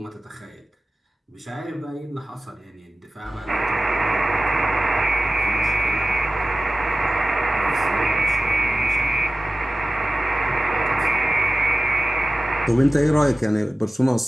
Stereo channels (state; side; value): normal; both; correlation 0.95